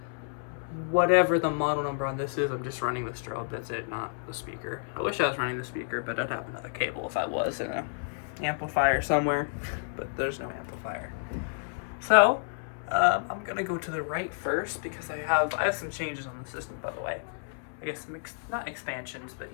whatever the model number on this is. I'm just running the strobe, that's it, not the speaker. I wish I was running the speaker, but I'd have another cable if I was in an amplifier somewhere, but there's no amplifier. So, I'm gonna go to the right first because I have some changes on the system, by the way. I guess some not expansions, but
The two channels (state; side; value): silent; right; 58 dB below the other